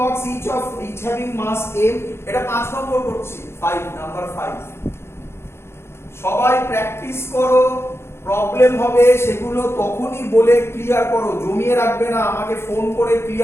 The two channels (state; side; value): late; right; 0.12 ms